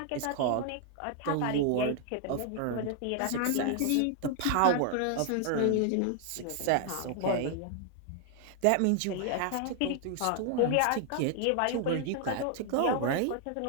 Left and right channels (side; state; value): both; different; correlation 0.00